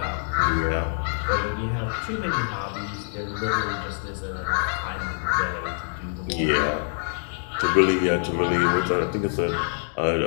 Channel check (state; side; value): silent; right; digital silence